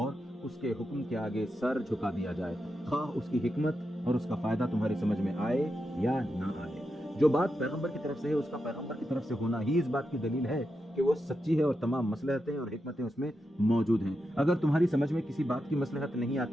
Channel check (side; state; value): both; normal; correlation 0.87